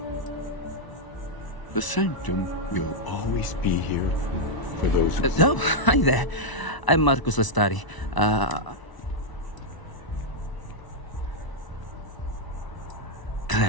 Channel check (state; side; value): late; right; 1.0 ms